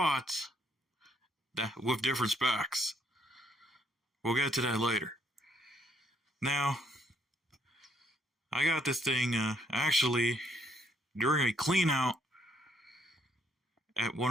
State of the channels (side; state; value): both; normal; correlation 0.70